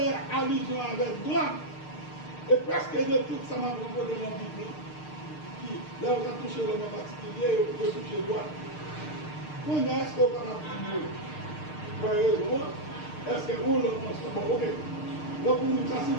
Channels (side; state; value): right; late; 6.6 ms